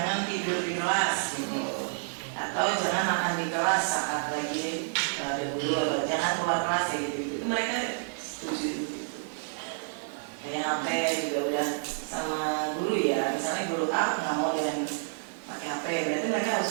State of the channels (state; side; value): silent; left; digital silence